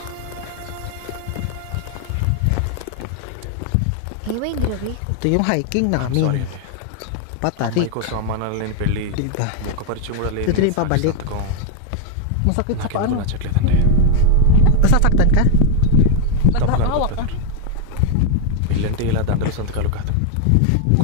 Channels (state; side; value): different; both; correlation 0.01